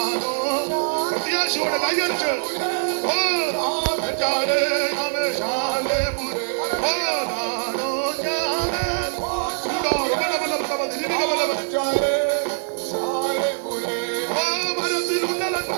പ്രത്യാശയോടെ കൈയടിച്ച് ഓ ശാലേപുരേ, ഓ കാണൂ ഞാൻ.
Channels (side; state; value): left; silent; digital silence